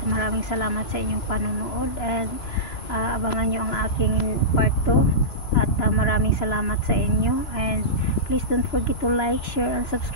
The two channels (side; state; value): right; late; 2.9 ms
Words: maraming salamat sa inyong panonood and abangan nyo ang aking part 2 at maraming salamat sa inyo and please don't forget to like, share and